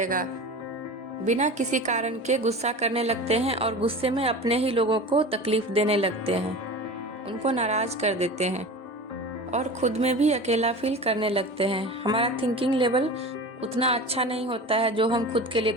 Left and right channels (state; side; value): normal; both; correlation 0.33